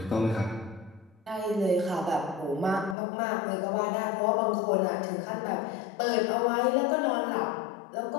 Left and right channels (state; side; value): drops out; right; at 3.0 s